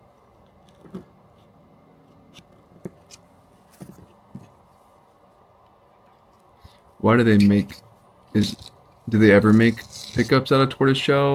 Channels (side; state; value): both; identical; correlation 1.00